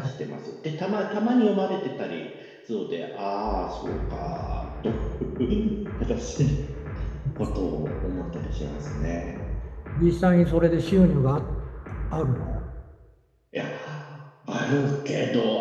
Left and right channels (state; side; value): identical; both; correlation 1.00